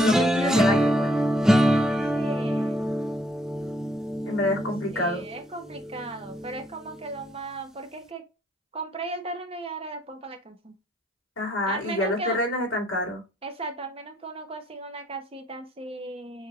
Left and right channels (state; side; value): normal; both; correlation 0.68